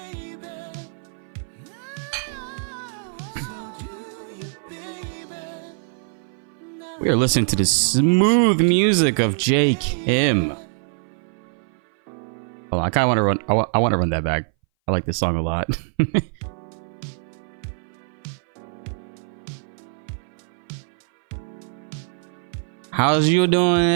We are listening to the smooth music of Jake Kim. Hold on, I kind of want to run. I want to run that back. I like this song a lot. How's you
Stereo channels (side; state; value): left; silent; 59 dB below the other